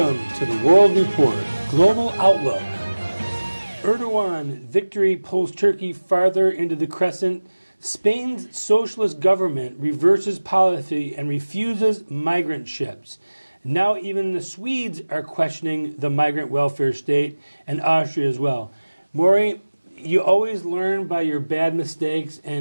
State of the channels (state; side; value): inverted; both; correlation -1.00